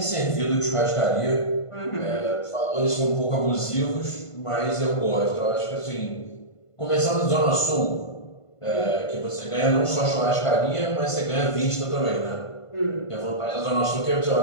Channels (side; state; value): right; late; 1.5 ms